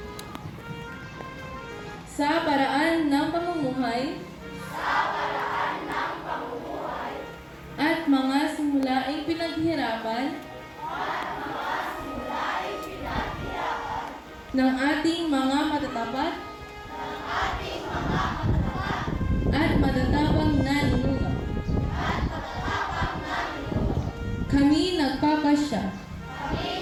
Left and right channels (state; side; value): identical; both; correlation 1.00